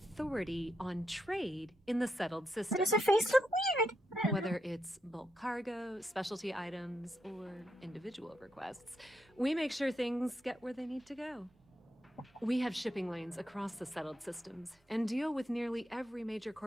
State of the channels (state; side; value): normal; both; correlation 0.81